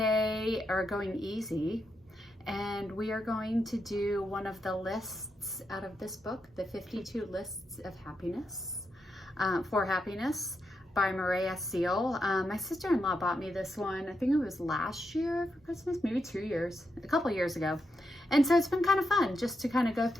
are going easy, and we are going to do one of the lists out of this book, the 52 Lists of Happiness, for Happiness by Moorea Seal. My sister-in-law bought me this one, I think it was last year for Christmas, maybe a couple years ago. And so it's been kind of fun just to kind of go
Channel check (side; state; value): both; normal; correlation 0.84